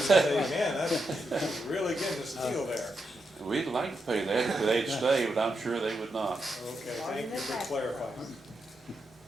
man, that's really getting a steal there. We'd like to pay that if they'd stay, but I'm sure they would not. Okay, thank you for clarifying.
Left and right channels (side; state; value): both; normal; correlation 0.84